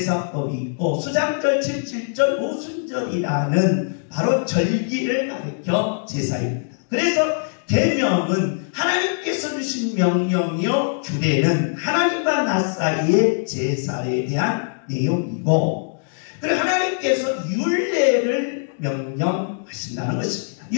있고 수장절, 칠칠절, 오순절이라는 바로 절기를 가리켜 제사입니다. 그래서 계명은 하나님께서 주신 명령이요, 규례는 하나님과 나 사이의 제사에 대한 내용이고, 그리고 하나님께서 율례를 명령하신다는 것입니다.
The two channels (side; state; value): right; silent; digital silence